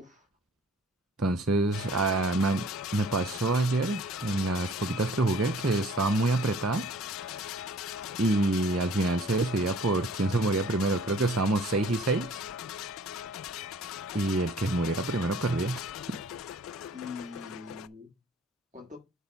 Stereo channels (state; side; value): normal; both; correlation 0.53